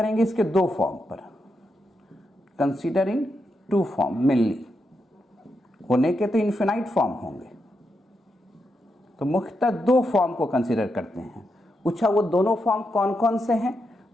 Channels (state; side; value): normal; both; correlation 0.84